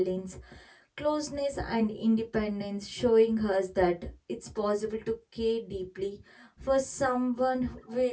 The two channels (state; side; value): identical; both; correlation 1.00